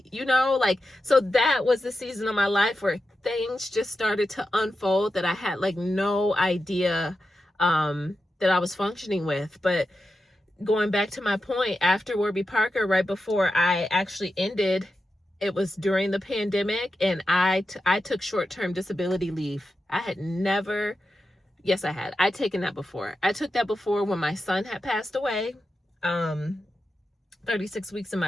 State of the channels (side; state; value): both; normal; correlation 0.90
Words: you know, like, so that was the season of my life where things just started to unfold that I had like no idea that I was functioning with. But going back to my point, after Warby Parker, right before I actually ended, it was during the pandemic, and I took short-term disability leave. I had never, yes, I had. I'd taken that before. I took that before when my son had passed away, 36 weeks in